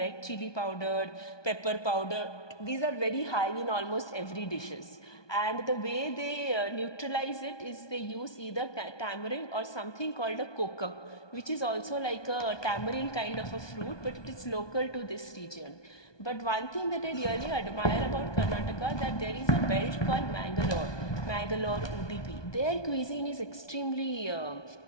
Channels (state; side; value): late; right; 1.2 ms